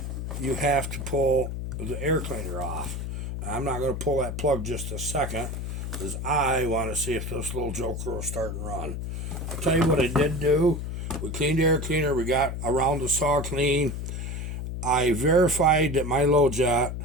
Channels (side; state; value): left; noise; hum, 5 dB below the sound